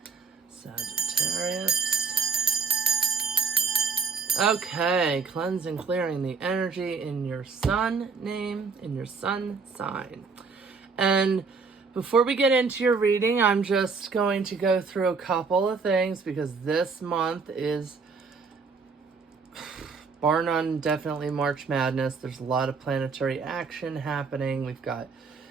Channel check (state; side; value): quieter; left; 4.9 dB